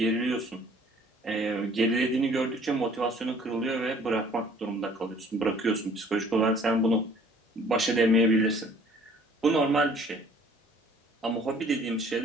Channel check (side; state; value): both; normal; correlation 0.55